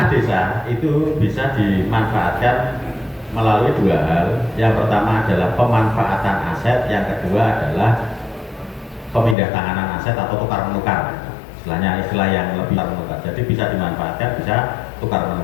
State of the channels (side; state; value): right; drops out; at 9.3 s